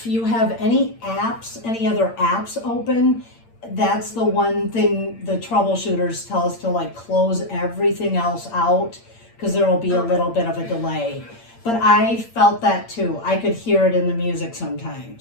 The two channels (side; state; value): right; late; 8.8 ms